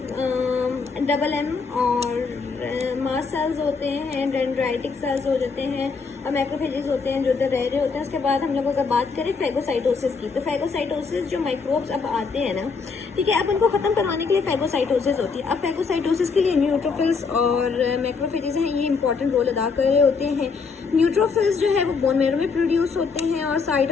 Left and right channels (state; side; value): quieter; right; 4.9 dB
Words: डबल एम, और मास सेल्स होते हैं, डेंड्राइटिक सेल्स हो जाते हैं, और मैक्रोफेजेस होते हैं जो उधर रह रहे होते हैं। उसके बाद हम लोग अगर बात करें फैगोसाइटोसिस की, तो फैगोसाइटोसिस जो माइक्रोब्स अब आते हैं ना, ठीक है, अब उनको खत्म करवाने के लिए फैगोसाइटोसिस होती है। अब फैगोसाइटोसिस के लिए न्यूट्रोफिल्स और मैक्रोफेजेस हैं, ये इंपॉर्टेंट रोल अदा कर रहे होते हैं। न्यूट्रोफिल्स जो है वो बोन मैरो में प्रोड्यूस होते हैं और साइड